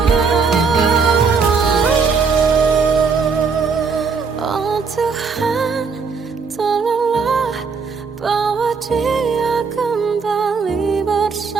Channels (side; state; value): left; quieter; 5.2 dB